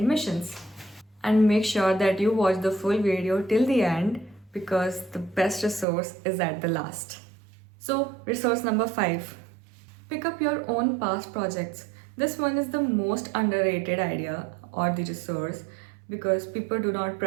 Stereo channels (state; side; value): drops out; left; at 5.9 s